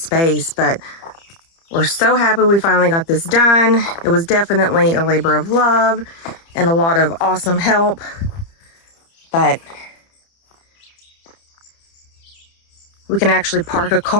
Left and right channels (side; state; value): right; late; 30 ms